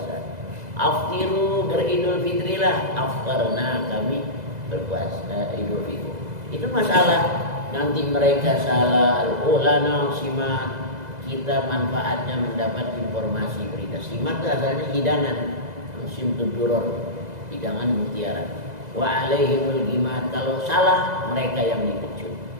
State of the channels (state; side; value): late; left; 2.0 ms